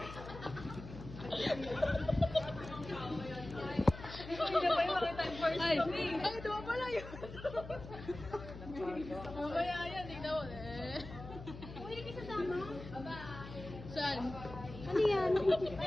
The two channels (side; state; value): left; noise; hum, 13 dB below the sound